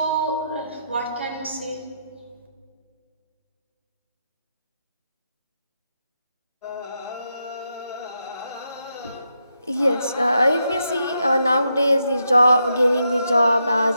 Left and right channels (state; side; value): inverted; both; correlation -0.83